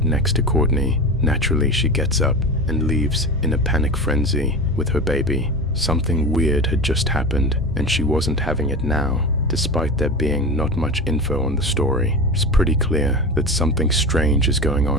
next to Courtney. Naturally, she gets up and leaves in a panic frenzy with her baby. Something weird had just happened, and she wasn't having it now. Despite there being not much info on the story, it's pretty clear that something strange is going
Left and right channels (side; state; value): both; normal; correlation 0.26